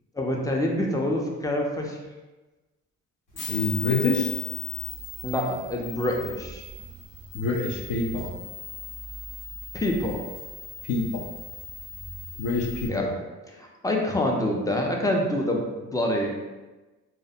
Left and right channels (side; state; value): both; normal; correlation 0.42